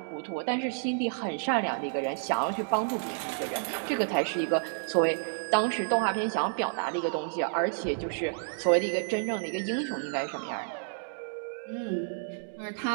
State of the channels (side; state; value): left; silent; digital silence